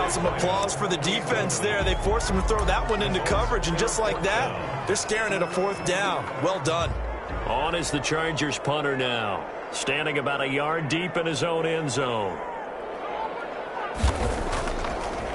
some applause for the defense there? They forced him to throw that one into coverage, and just like that, they're staring at a 4th down. Well done. On is the Chargers punter now, standing about a yard deep in his own end zone.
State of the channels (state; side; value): identical; both; correlation 1.00